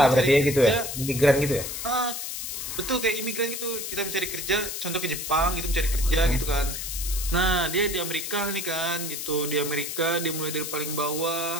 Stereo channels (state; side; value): noise; left; hiss, 5 dB below the sound